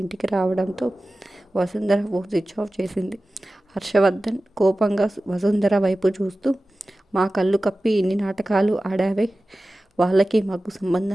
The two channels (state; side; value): normal; both; correlation 0.96